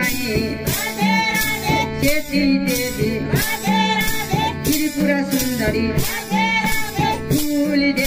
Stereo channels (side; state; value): both; identical; correlation 1.00